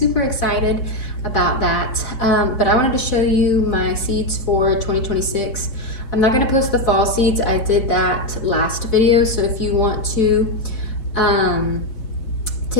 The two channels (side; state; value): right; late; 4.2 ms